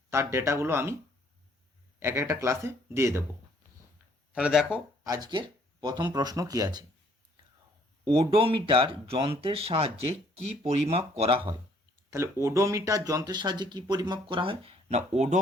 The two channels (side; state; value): both; normal; correlation 0.63